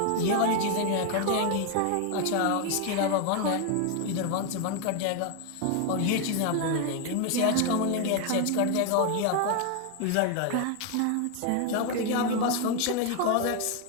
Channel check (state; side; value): different; both; correlation 0.01